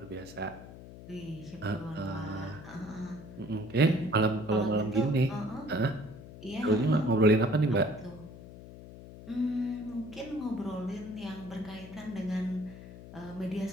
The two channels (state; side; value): noise; left; hum, 15 dB below the sound